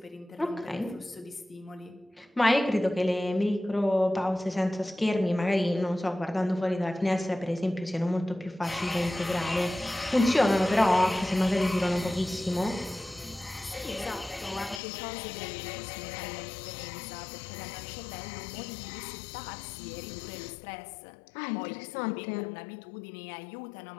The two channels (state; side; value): drops out; right; at 14.8 s